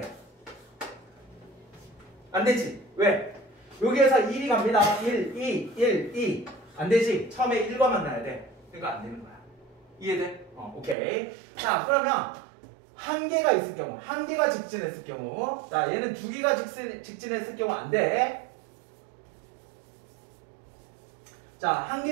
안 되지. 왜? 여기에서 1이 갑니다. 1, 2, 1, 2. 안 되지. 처음에 1과 만나야 돼. 그러니까 안 되는 거야. 이해돼? 오케이. 자, 그러면 한 개가 있을 경우, 한 개가 직진했을 경우, 자, 얘는 2개가 직진했을 경우 안 돼. 자, 한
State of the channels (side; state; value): left; drops out; at 11.0 s